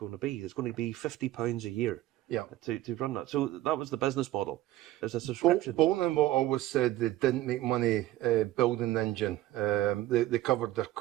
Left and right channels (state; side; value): quieter; left; 15.2 dB